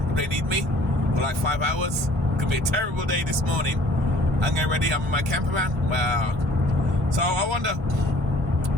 they need me for like 5 hours. Could be a terrible day this morning. I'm getting ready, I'm in my camper van. Wow. So I wonder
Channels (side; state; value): both; normal; correlation 0.53